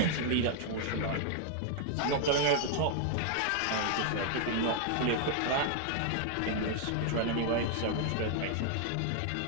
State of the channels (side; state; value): both; different; correlation 0.00